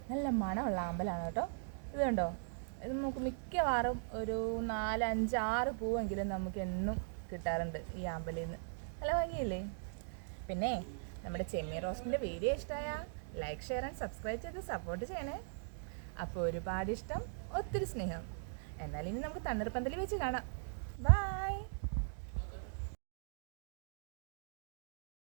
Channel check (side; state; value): left; silent; digital silence